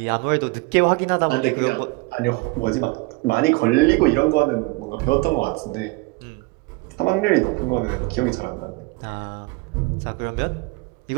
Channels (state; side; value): quieter; left; 25.7 dB